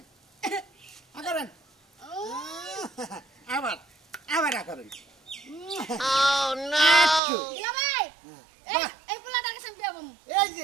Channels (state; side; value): drops out; left; at 7.2 s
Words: আগরেন আবার আগরেন দুলাভাই এই পোলাটার কাছে আমি বিয়া বমু এই